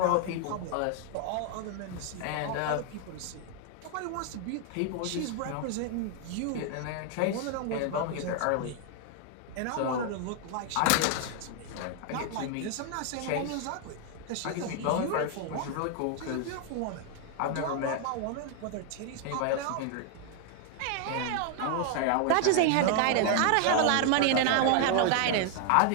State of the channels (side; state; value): both; different; correlation 0.00